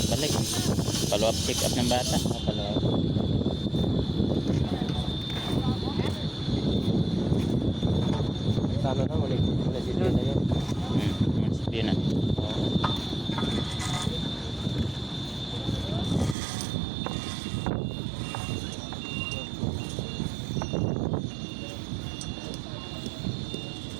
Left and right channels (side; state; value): left; drops out; at 16.4 s